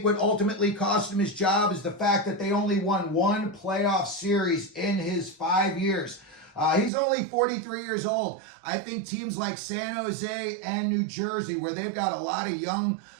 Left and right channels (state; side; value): drops out; left; at 6.9 s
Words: what ultimately cost him his job is the fact that they only won one playoff series in his 5 years. He's only 43 years old. I think teams like San Jose and New Jersey, where they've got a lot of young